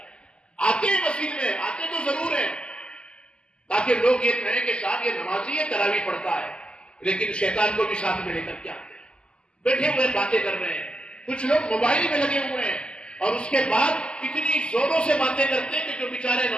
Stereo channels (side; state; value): right; late; 0.050 ms